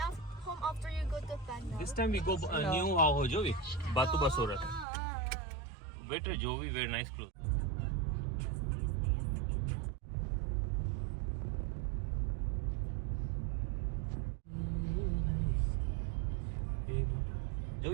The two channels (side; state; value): left; drops out; at 4.9 s